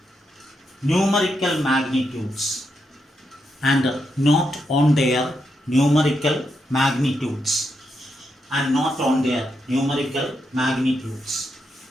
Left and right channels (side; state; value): both; normal; correlation 0.83